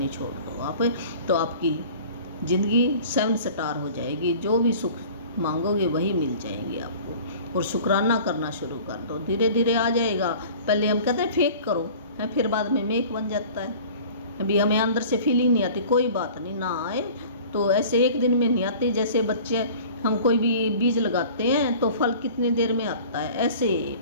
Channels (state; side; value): inverted; both; correlation -0.44